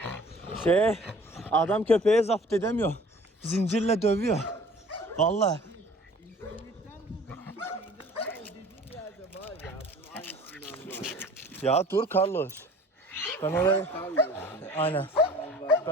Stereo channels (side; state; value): both; normal; correlation 0.48